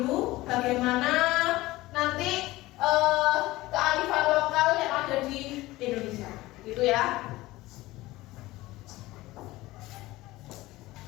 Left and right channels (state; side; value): quieter; right; 18.6 dB